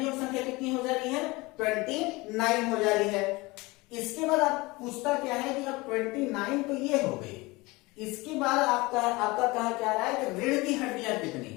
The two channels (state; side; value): quieter; right; 23.0 dB